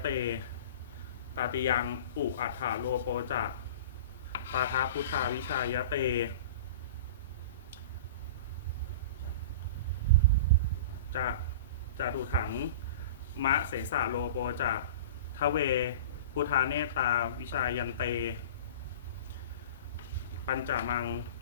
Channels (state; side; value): inverted; both; correlation -0.36